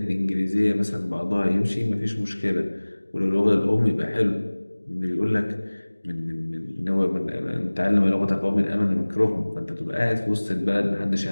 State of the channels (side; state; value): both; inverted; correlation -1.00